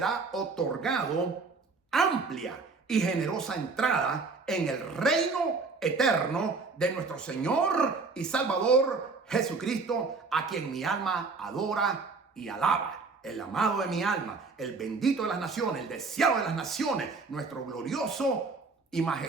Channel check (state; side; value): quieter; left; 4.2 dB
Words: otorgado amplia y generosa entrada en el reino eterno de nuestro Señor y Salvador Jesucristo, a quien mi alma adora y alaba. El amado de mi alma, el bendito de las naciones, el deseado de las naciones, nuestro glorioso y